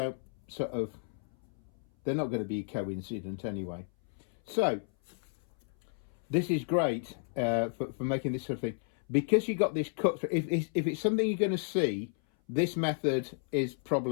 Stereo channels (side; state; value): right; silent; 56 dB below the other